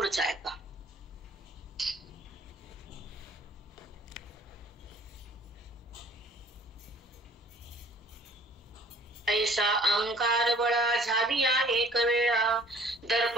ऐका. ऐसा अहंकार बळा झाली एक वेळा,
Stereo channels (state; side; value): normal; both; correlation 0.53